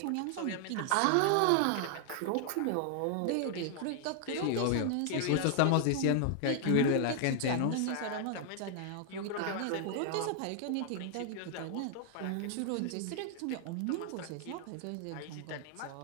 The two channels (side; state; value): both; different; correlation 0.00